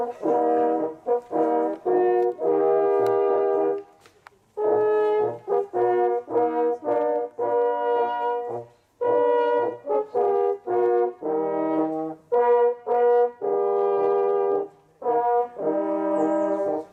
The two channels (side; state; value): both; identical; correlation 1.00